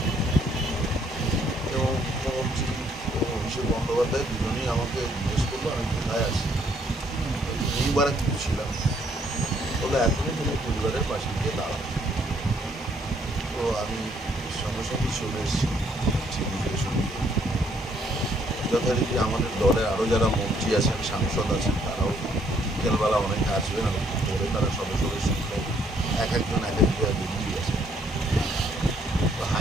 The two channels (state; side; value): normal; both; correlation 0.67